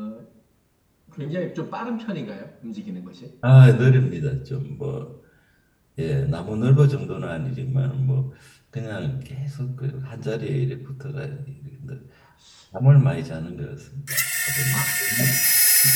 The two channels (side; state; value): both; identical; correlation 1.00